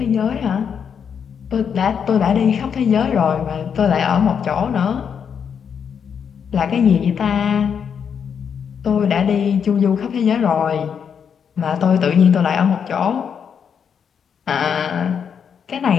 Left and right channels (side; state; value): right; quieter; 7.3 dB